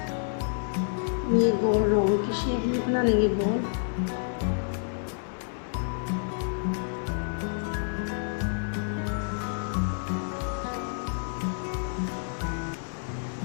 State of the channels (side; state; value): right; silent; digital silence